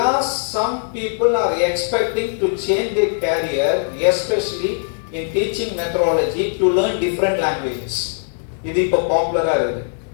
are some people are expecting to change their career, especially in teaching methodology, to learn different languages. இது இப்போ பாப்புலரா இருக்கு.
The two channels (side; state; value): right; silent; digital silence